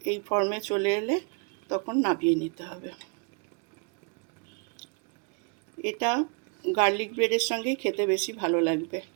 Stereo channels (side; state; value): left; quieter; 35.7 dB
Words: এই ফর্মে চলে এলে তখন নামিয়ে নিতে হবে। এটা গার্লিক ব্রেডের সঙ্গেই খেতে বেশি ভালো লাগবে।